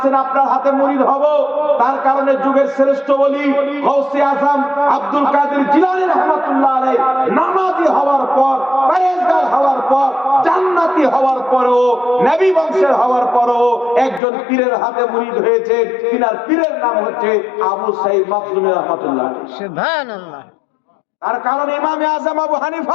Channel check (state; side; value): drops out; right; at 14.2 s